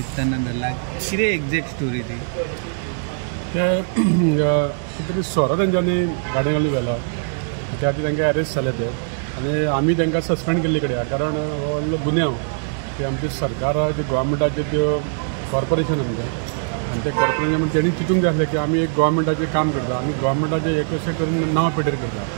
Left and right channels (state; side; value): silent; left; digital silence